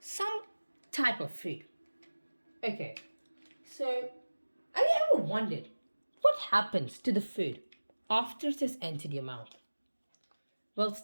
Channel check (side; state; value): both; inverted; correlation -1.00